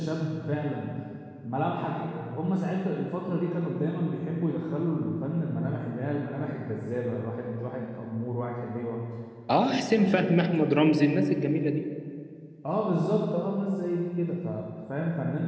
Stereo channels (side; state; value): both; identical; correlation 1.00